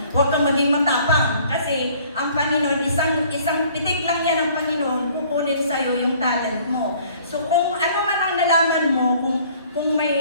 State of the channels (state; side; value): inverted; both; correlation -0.56